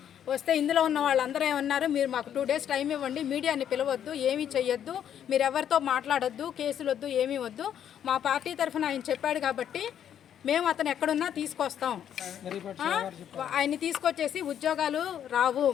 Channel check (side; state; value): right; quieter; 9.6 dB